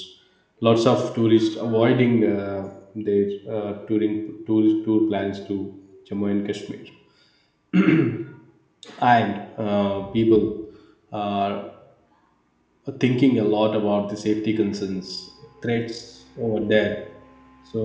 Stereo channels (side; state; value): both; identical; correlation 1.00